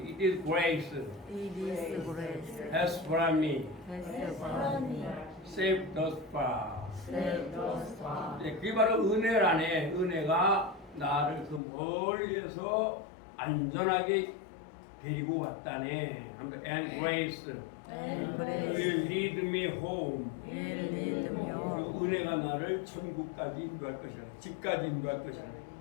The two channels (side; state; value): right; drops out; at 11.6 s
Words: it is grace It is grace has brought me has from me safe thus far. saved us far. 네, 그게 바로 은혜라네. 은혜가 나를 그 멀리에서 안전하게 데리고 왔다네. And grace And will grace lead me home. will lead me home. 그 은혜가 나를 천국까지 인도할 것이라. 집까지 인도할 것이라.